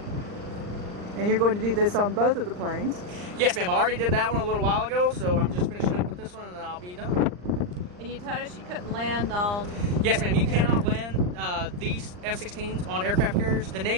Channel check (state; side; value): late; left; 39 ms